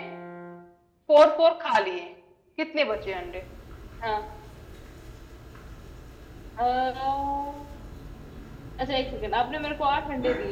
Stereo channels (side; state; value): both; identical; correlation 1.00